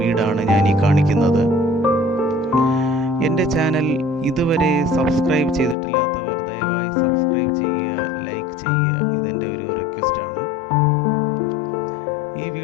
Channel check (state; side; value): drops out; right; at 5.8 s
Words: വീടാണ് ഞാൻ ഈ കാണിക്കുന്നത്. എൻ്റെ ചാനൽ ഇതുവരെ സബ്സ്ക്രൈബ് ചെയ്തിട്ടില്ലാത്തവർ ദയവായി സബ്സ്ക്രൈബ് ചെയ്യുക, ലൈക്ക് ചെയ്യുക. ഇതെൻ്റെ ഒരു റിക്വസ്റ്റാണ്. ഈ